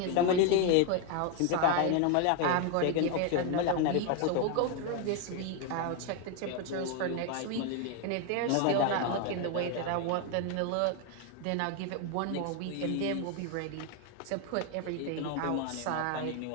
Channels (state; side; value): different; both; correlation 0.01